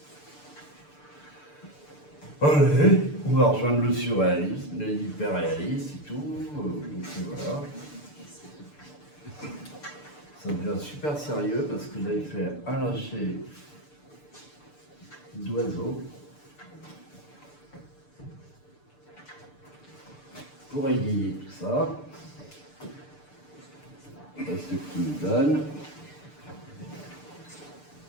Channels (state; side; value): late; right; 6.8 ms